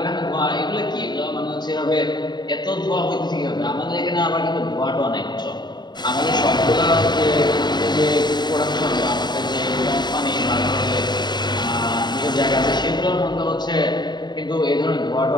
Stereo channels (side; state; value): right; late; 0.21 ms